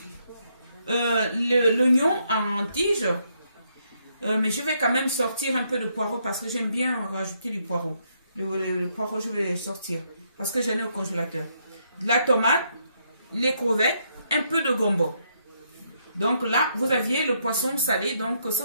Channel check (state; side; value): inverted; both; correlation -0.75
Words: l'oignon en tige. Mais je vais quand même sortir un peu de poireau parce que j'aime bien rajouter du poireau. Le poireau, je vais sortir parce que j'en ai au congélateur. De la tomate, les crevettes, un peu de gombo. Donc là, vous aviez le poisson salé, donc ce